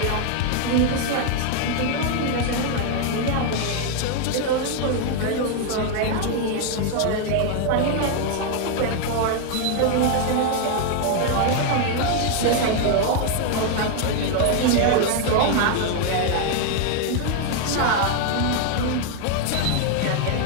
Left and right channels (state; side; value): different; both; correlation 0.00